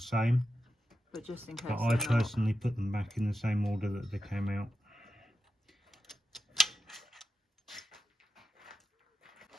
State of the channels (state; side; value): normal; both; correlation 0.88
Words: But just in case. but I personally put them back in the same order that they came out.